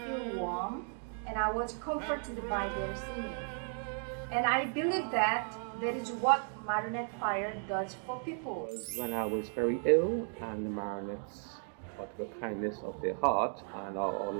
feel warm, and I was comforted by their singing. And I believe that is what Marionette choir does for people. When I was very ill, and the Marionettes, out of the kindness of their heart and our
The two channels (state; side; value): silent; left; 54 dB below the other